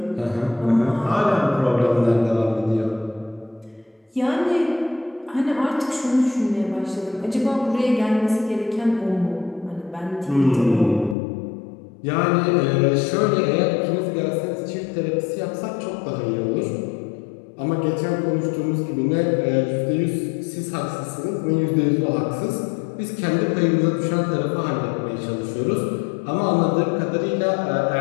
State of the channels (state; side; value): drops out; right; at 11.2 s